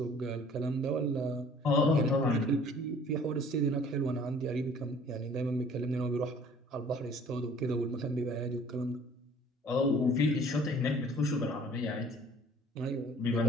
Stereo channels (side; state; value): both; normal; correlation 0.53